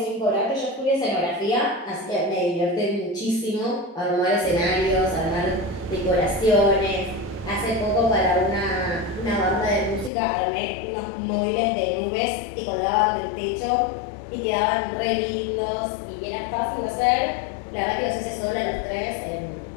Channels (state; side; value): drops out; right; at 10.1 s